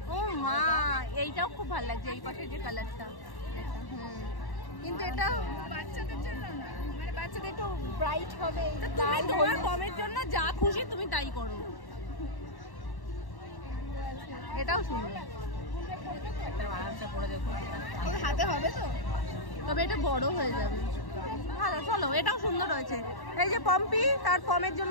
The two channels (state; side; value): late; right; 1.1 ms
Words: ও মা, এইটাও খুব ভালো লাগছে, এই পাশে যে কালারটা। কিন্তু এটা বাচ্চাদের জন্য না, মানে বাচ্চাদের একটু ব্রাইট হবে। তুমি তোমার কমের জন্য যা খুশি তুমি তাই করো। এটাও সুন্দর, হাতে হবে তো, তবে এটা বড় হয়ে যাবে। ভালো, চলো, এটাও সুন্দর হয়েছে। এই যে পম্পি তার পমের